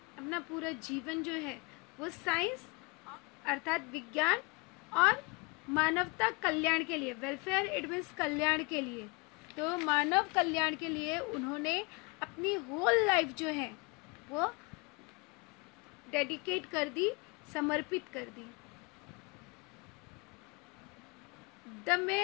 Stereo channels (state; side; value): quieter; right; 28.3 dB